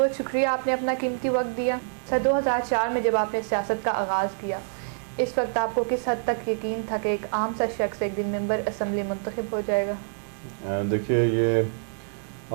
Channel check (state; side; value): silent; left; 61 dB below the other